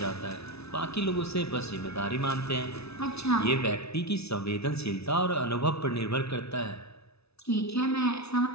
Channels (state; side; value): late; right; 0.79 ms